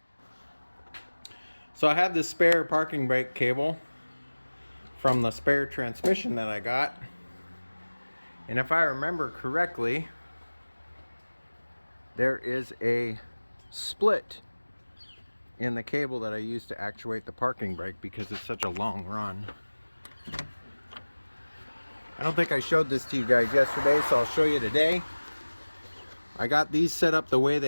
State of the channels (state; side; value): inverted; both; correlation -1.00